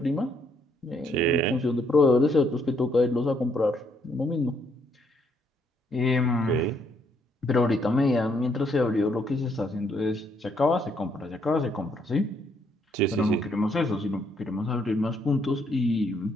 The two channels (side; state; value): both; normal; correlation 0.71